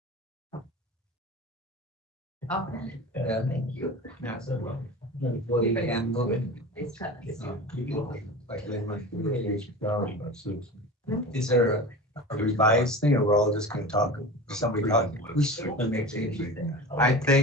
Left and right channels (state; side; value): normal; both; correlation 0.32